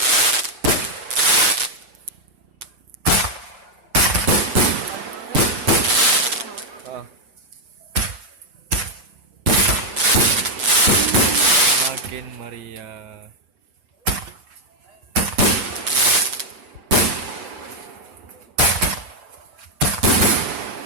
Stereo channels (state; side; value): late; left; 6.8 ms